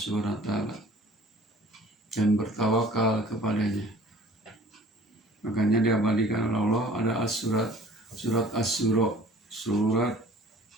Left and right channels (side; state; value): both; normal; correlation 0.50